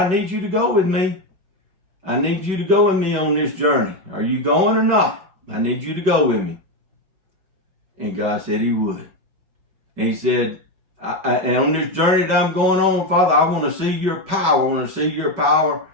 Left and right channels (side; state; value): left; late; 5.2 ms